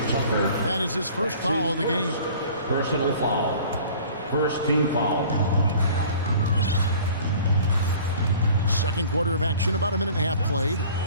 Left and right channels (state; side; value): inverted; both; correlation -0.48